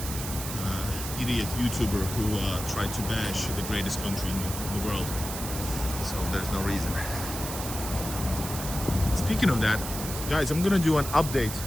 idiot YouTuber who tried to bash the greatest country in the world. So there's no reason. Speaking of that, guys, I'm gonna do an update.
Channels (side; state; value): right; noise; hiss, 7 dB below the sound